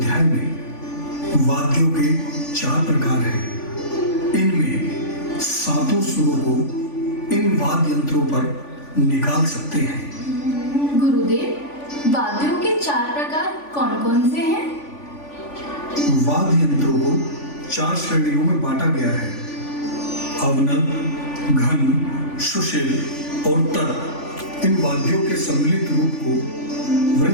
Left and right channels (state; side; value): late; right; 3.5 ms